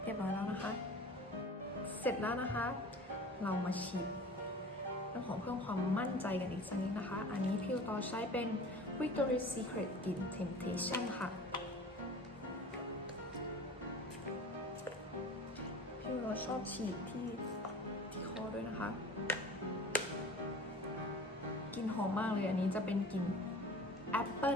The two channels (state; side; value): normal; both; correlation 0.40